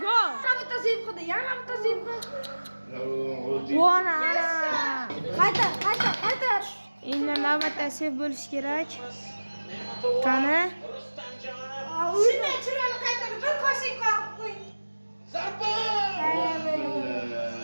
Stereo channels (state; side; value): inverted; both; correlation -1.00